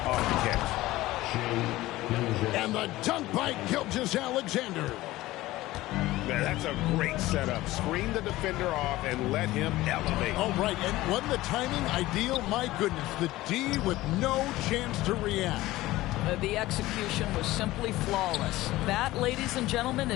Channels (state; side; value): quieter; right; 17.4 dB